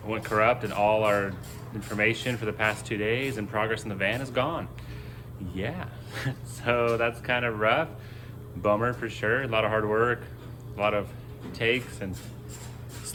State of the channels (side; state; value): both; identical; correlation 1.00